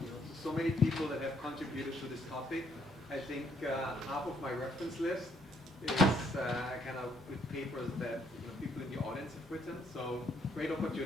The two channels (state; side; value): normal; both; correlation 0.69